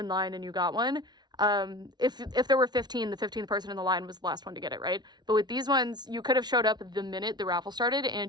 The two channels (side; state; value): left; late; 0.20 ms